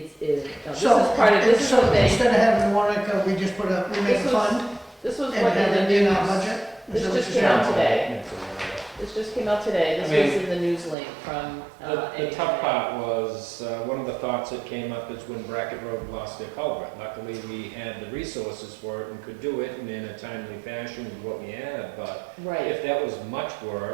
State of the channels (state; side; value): drops out; left; at 11.0 s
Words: is So, part of, this is so the thing. instead of having the warrant article, we just we make a This was- fund This was and what have in it the in our news. budget? Is This that what just you're came out saying? today. This just came out today. This I mean, was in the news link from. The tough part was, one of the thoughts that came up is when Brackett Road lost their culvert. Luckily, we had the resources for it and could do it and in a timely fashion with what we had, but Right. if that was much